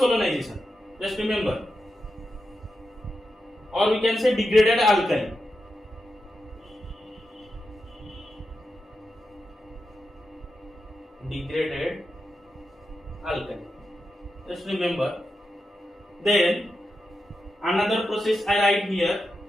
Just remember. Or we can say degraded alkali. Degraded alkali. Just remember. Then another process I write here.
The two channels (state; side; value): normal; both; correlation 0.89